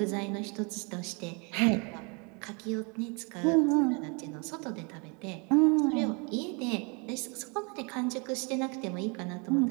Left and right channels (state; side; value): quieter; left; 32.9 dB